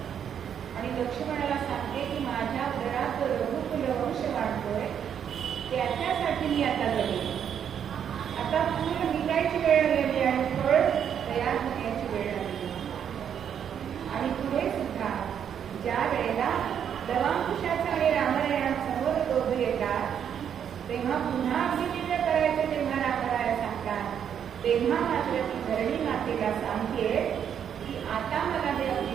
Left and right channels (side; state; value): left; quieter; 8.5 dB